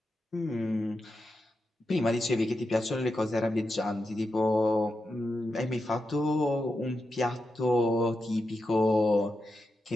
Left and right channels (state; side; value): normal; both; correlation 0.88